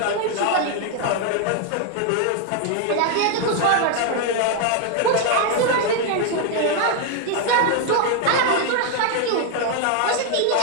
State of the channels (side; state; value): both; different; correlation 0.00